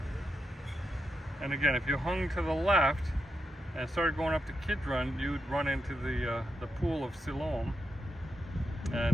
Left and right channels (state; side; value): normal; both; correlation 0.85